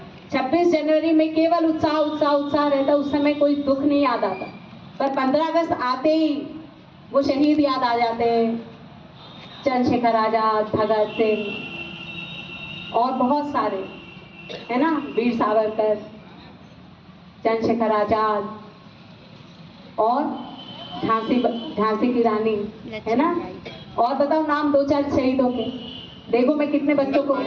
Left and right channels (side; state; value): both; identical; correlation 1.00